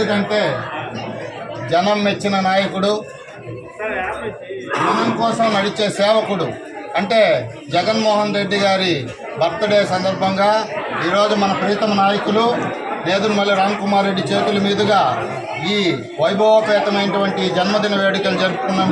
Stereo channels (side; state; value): both; identical; correlation 1.00